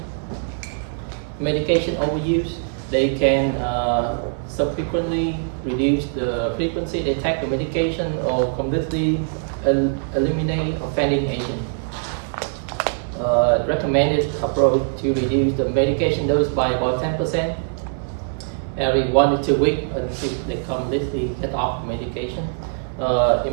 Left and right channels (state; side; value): silent; left; 64 dB below the other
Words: Medication overuse, They can subsequently reduce the frequency they take the medication or completely eliminate offending agent. Recommended approach to reduce the medication dose by about 10% every 1 to 2 weeks until they completely get off medication.